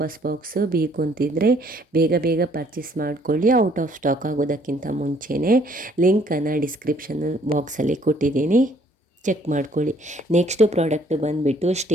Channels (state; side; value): normal; both; correlation 0.62